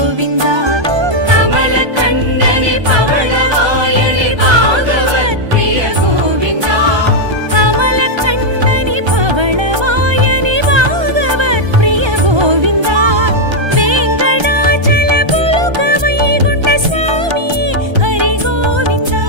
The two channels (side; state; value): left; late; 1.3 ms